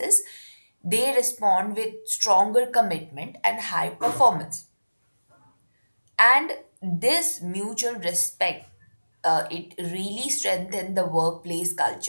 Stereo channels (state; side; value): inverted; both; correlation -1.00